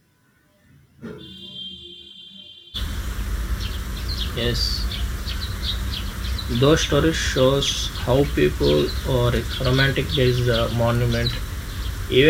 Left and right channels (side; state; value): both; identical; correlation 1.00